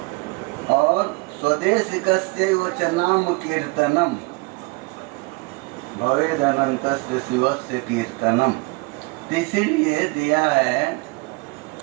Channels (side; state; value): left; quieter; 27.5 dB